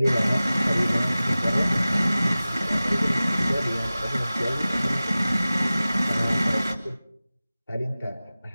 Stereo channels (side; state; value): both; inverted; correlation -0.97